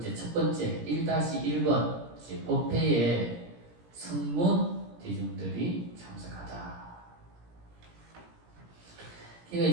첫 번째 1-1번 이제 법회에 성문 대중들이 참석하다. 그러니까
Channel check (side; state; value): left; late; 17 ms